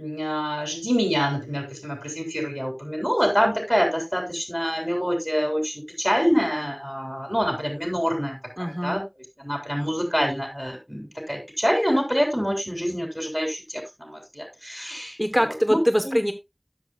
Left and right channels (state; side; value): identical; both; correlation 1.00